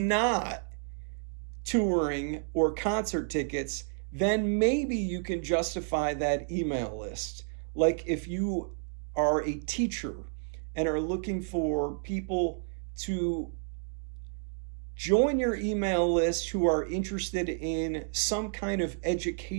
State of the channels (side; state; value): left; silent; digital silence